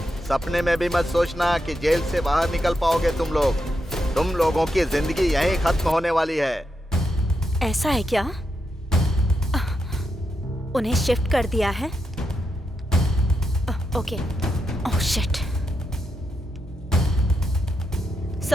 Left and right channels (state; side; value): normal; both; correlation 0.84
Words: सपने में भी मत सोचना कि जेल से बाहर निकल पाओगे तुम लोग। तुम लोगों की जिंदगी यहीं खत्म होने वाली है। ऐसा है क्या? उन्हें शिफ्ट कर दिया है? Okay. Oh shit.